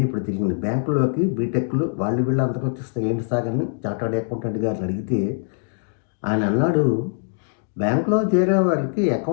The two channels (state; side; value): silent; right; 64 dB below the other